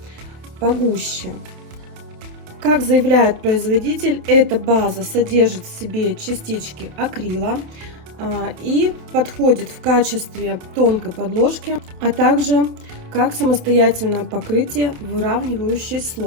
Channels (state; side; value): late; left; 28 ms